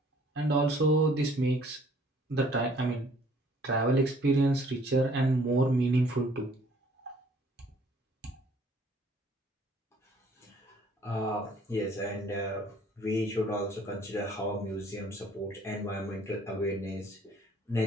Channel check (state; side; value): normal; both; correlation 0.58